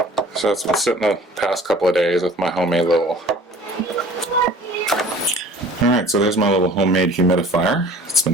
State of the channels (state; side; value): normal; both; correlation 0.47